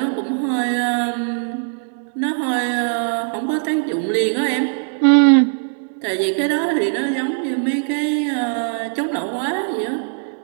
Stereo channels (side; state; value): left; silent; digital silence